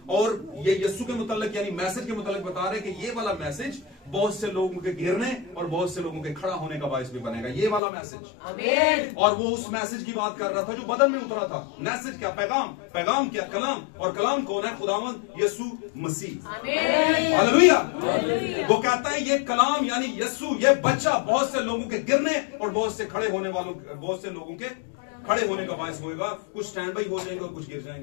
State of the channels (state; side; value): drops out; right; at 7.8 s